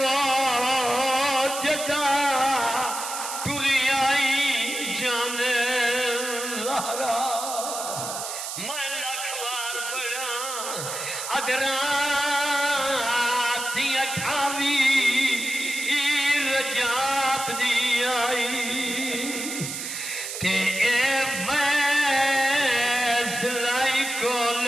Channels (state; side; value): noise; right; hiss, 6 dB below the sound